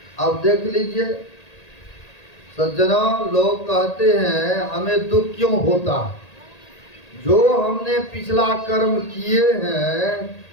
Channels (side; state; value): right; late; 1.8 ms